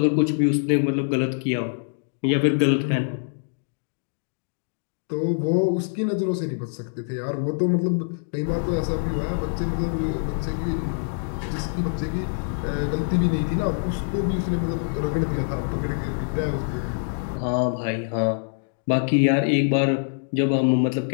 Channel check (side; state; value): right; silent; digital silence